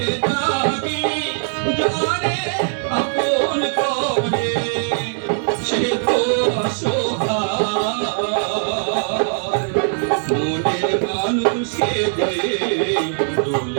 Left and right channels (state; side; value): silent; left; 65 dB below the other